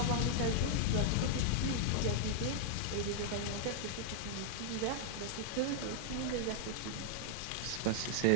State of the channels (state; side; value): different; both; correlation -0.01